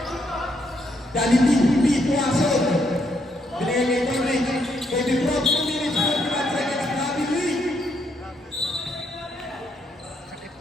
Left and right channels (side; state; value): both; normal; correlation 0.75